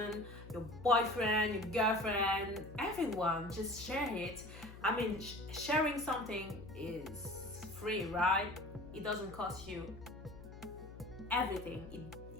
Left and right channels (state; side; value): noise; left; hum, 15 dB below the sound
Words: your boyfriend, your girlfriend, everyone. Just share it. I mean, sharing something is free, right? It doesn't cost you everything.